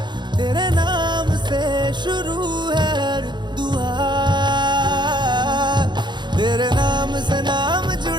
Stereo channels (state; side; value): late; left; 0.22 ms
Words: तेरे नाम से शुरू है हर दुआ तेरे नाम से नाम